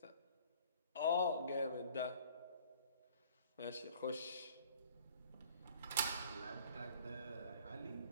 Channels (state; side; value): inverted; both; correlation -0.52